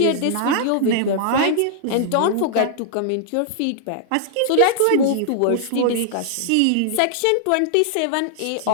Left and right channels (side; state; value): both; different; correlation -0.01